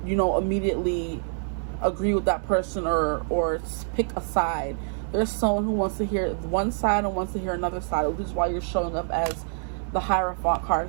immediately agree with that person or pick a side. There's someone who wants to hear one side and wants to hear another side, which is why you're showing up as the Hierophant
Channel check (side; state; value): left; silent; 61 dB below the other